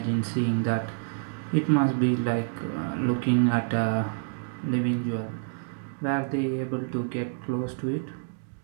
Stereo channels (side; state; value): left; silent; digital silence